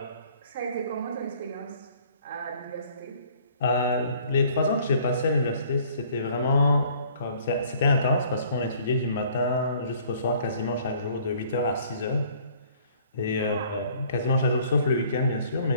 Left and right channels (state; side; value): inverted; both; correlation -0.57